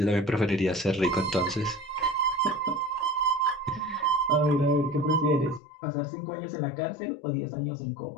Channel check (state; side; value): drops out; right; at 5.6 s